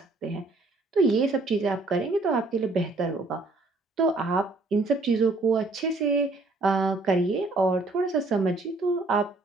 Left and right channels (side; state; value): left; quieter; 3.2 dB